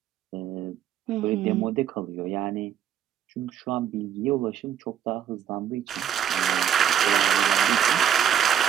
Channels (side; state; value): left; quieter; 9.5 dB